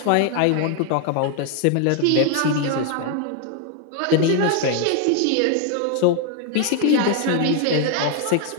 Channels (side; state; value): both; different; correlation 0.00